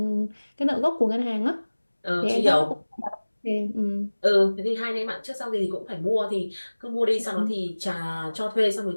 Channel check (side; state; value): both; inverted; correlation -1.00